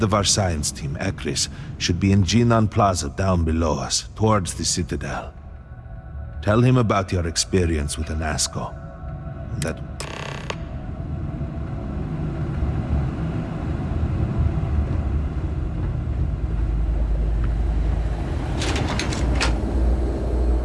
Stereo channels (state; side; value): identical; both; correlation 1.00